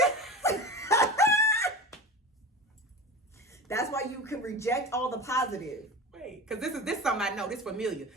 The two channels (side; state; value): both; normal; correlation 0.30